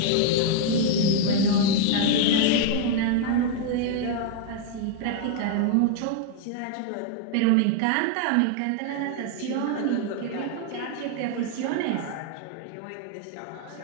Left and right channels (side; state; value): both; different; correlation 0.00